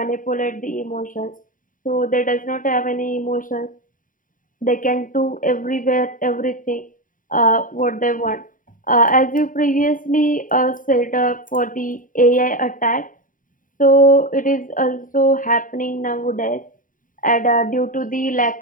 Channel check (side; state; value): right; late; 0.39 ms